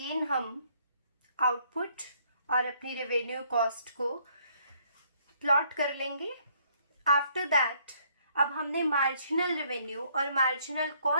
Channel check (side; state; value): both; inverted; correlation -0.66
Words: हम आउटपुट और अपनी रेवेन्यू कॉस्ट को प्लॉट कर लेंगे। आफ्टर दैट अब हमने मार्जिनल रेवेन्यू और मार्जिनल